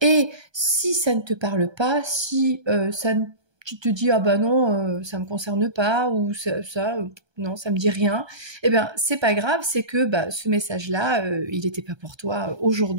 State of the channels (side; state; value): left; late; 1.3 ms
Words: Et si ça ne te parle pas, si ça ne tu te dis ah bah non ça me concerne pas ou non ça me dit rien, eh bien c'est pas grave, c'est que bah, ce message là il n'était pas pour toi